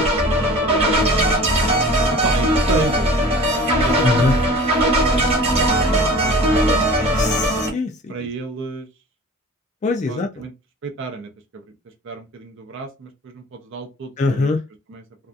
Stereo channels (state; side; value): normal; both; correlation 0.43